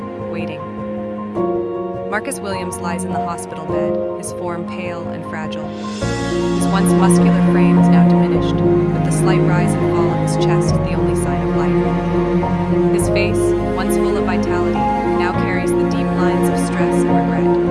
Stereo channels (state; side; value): identical; both; correlation 1.00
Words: waiting. Marcus Williams lies in the hospital bed, his form pale and fragile. His once muscular frame is now diminished, with the slight rise and fall of his chest the only sign of life. His face, once full of vitality, now carries the deep lines of stress and regret.